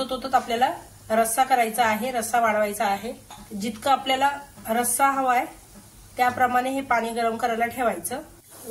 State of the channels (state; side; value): identical; both; correlation 1.00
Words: आपल्याला रस्सा करायचा आहे, रस्सा वाढवायचा आहे। जितकं आपल्याला रस्सा हवाय त्याप्रमाणे हे पाणी गरम करायला ठेवायचं।